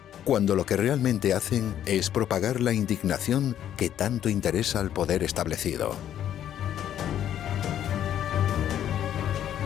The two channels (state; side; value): quieter; right; 10.7 dB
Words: cuando lo que realmente hacen es propagar la indignación que tanto interesa al poder establecido.